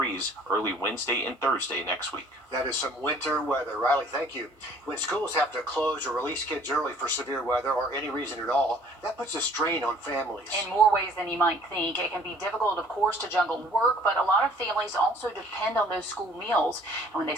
early Wednesday and Thursday next week. That is some winter weather. Riley, thank you. When schools have to close or release kids early for severe weather or any reason at all, that puts a strain on families. In more ways than you might think. It can be difficult, of course, to juggle work, but a lot of families also depend on those school meals. And when they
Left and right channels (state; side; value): normal; both; correlation 0.55